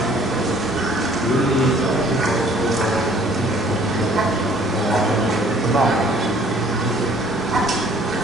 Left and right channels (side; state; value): both; normal; correlation 0.57